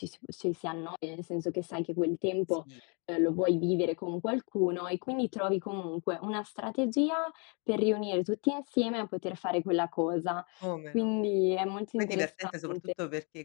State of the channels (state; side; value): quieter; right; 35.2 dB